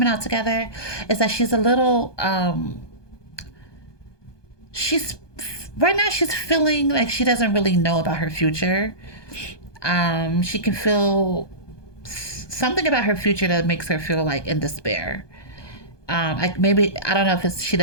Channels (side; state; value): right; late; 1.2 ms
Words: out together is that she's a little she's right now she's feeling like she doesn't really know about her future. She can feel something about her future that makes her feel like in despair. Like maybe I don't know if it's she